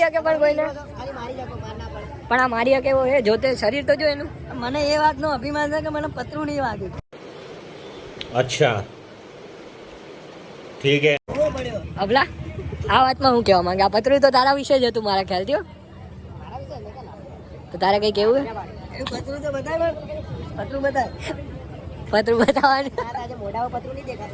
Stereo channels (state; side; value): identical; both; correlation 1.00